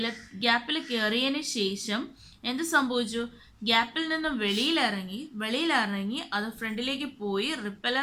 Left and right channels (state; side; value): identical; both; correlation 1.00